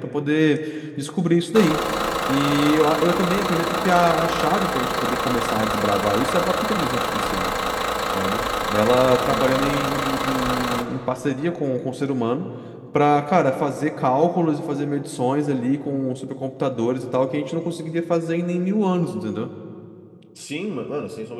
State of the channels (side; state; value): both; identical; correlation 1.00